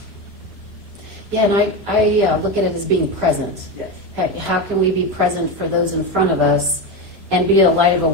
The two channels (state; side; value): late; left; 3.0 ms